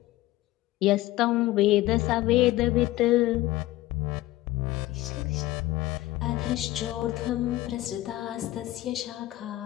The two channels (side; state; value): right; quieter; 16.7 dB